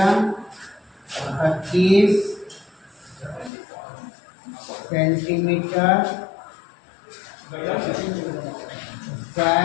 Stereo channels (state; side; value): drops out; right; at 3.5 s